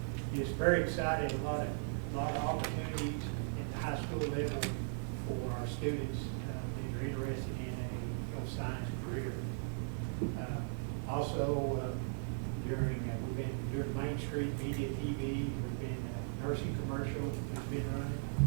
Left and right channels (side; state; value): left; silent; 53 dB below the other